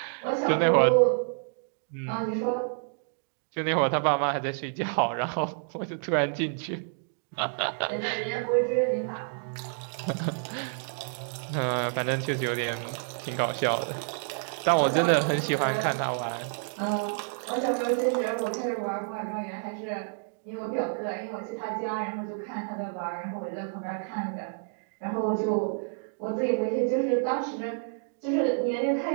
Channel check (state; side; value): silent; left; digital silence